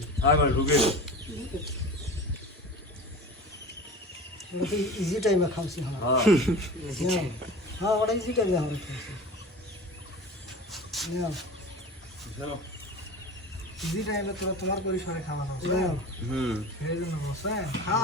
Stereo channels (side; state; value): both; normal; correlation 0.35